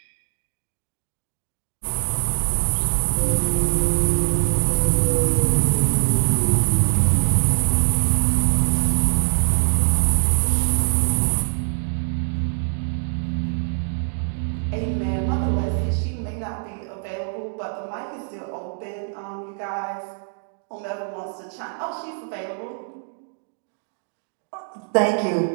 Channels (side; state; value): left; silent; digital silence